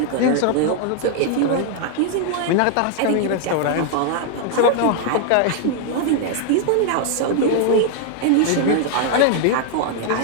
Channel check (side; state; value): both; different; correlation 0.00